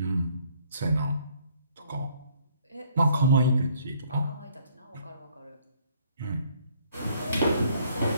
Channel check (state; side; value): inverted; both; correlation -0.62